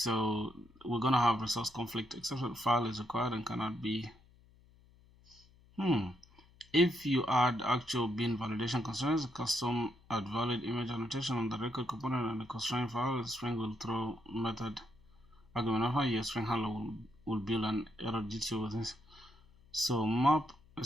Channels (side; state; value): left; noise; hum, 27 dB below the sound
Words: we're gonna have resource conflict exception. File is required and cannot be. If you add actual bin validation constraints, custom add valid image annotation on the record component and the constraint file, the string will throw method argument alpha. Your string handler will build an error DTO with this. So map a